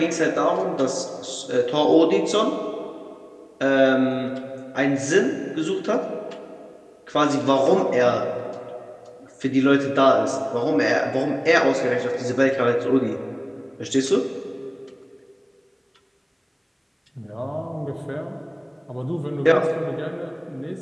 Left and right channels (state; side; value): identical; both; correlation 1.00